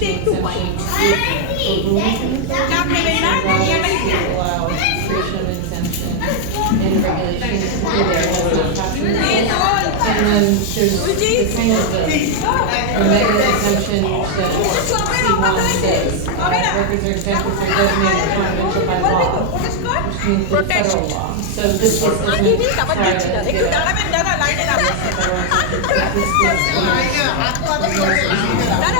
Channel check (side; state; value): both; different; correlation 0.00